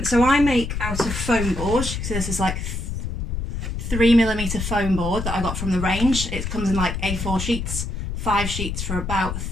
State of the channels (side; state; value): left; noise; rumble, 4 dB below the sound